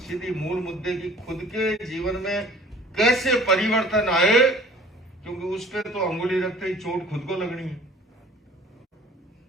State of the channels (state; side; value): normal; both; correlation 0.49